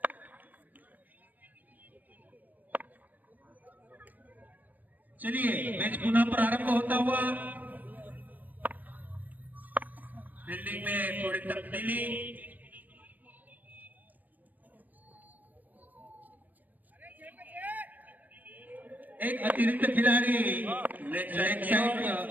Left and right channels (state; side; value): late; left; 0.084 ms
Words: चलिए मैच पुनः प्रारंभ होता हुआ। फील्डिंग में थोड़ी तब्दीली। एक अतिरिक्त खिलाड़ी लेग साइड